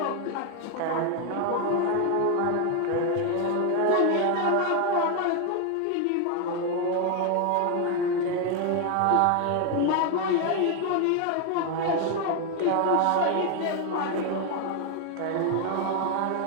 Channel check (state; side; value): different; both; correlation 0.01